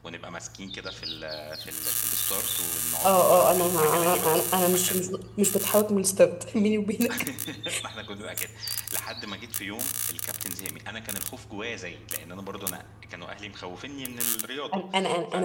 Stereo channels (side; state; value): both; identical; correlation 1.00